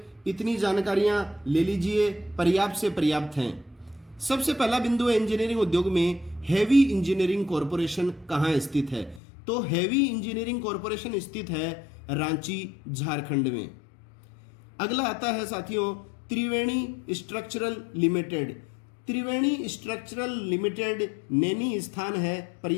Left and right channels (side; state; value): right; drops out; at 9.2 s